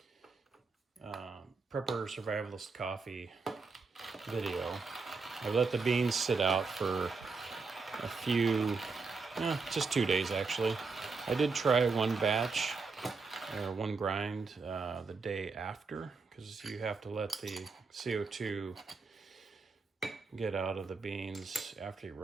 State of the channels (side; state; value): left; quieter; 4.4 dB